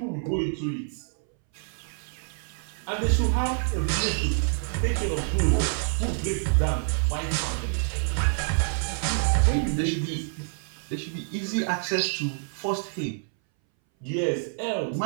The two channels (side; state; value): left; silent; 60 dB below the other